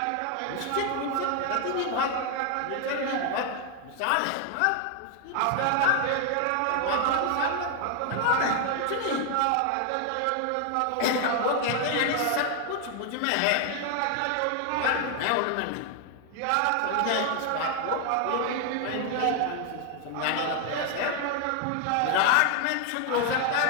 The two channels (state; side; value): different; both; correlation 0.00